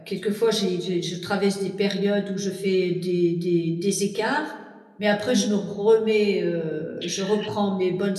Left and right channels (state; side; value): identical; both; correlation 1.00